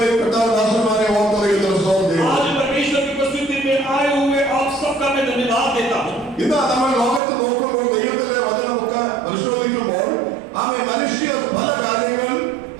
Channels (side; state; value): left; drops out; at 7.2 s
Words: ദാസന്മാരെ ഓർത്ത് ദൈവത്തിന് സ്തോത്രം ചെയ്യുന്നു. आज परमेश्वर की उपस्थिति में आए हुए आप सबका मैं धन्यवाद देता हूँ. ഇന്ന് നമ്മൾ ലോകത്ത് നോക്കുമ്പോൾ ദൈവത്തിന്റെ വചനമൊക്കെ പരിശോധിക്കുമ്പോൾ അവൻ മനുഷ്യ പല കാര്യങ്ങൾ